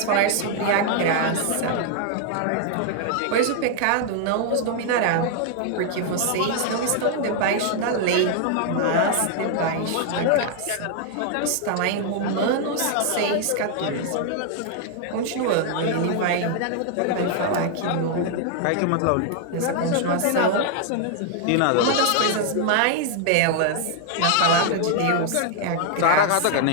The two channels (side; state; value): both; different; correlation 0.00